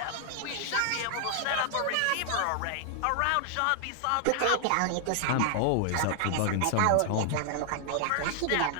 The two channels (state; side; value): different; both; correlation 0.00